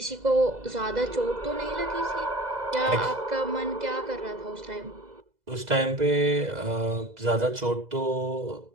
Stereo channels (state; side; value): late; left; 2.0 ms